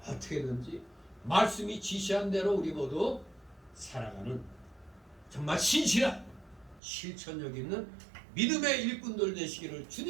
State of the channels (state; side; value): drops out; left; at 6.8 s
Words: 어떻게든지 말씀이 지시한 대로 우리 모두 살아가는 정말 신실한 실천력 있는 믿음의 일꾼들 되시기를